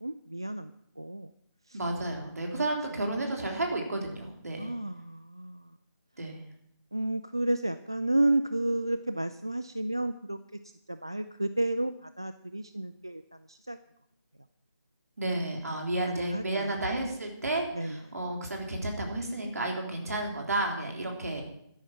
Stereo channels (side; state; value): both; inverted; correlation -0.82